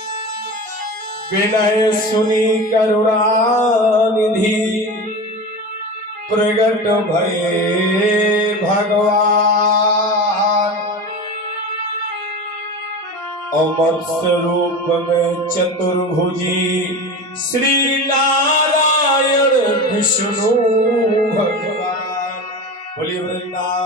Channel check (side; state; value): both; normal; correlation 0.28